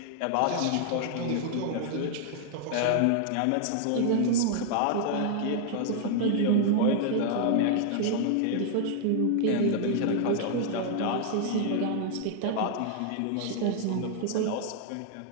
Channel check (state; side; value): different; both; correlation 0.00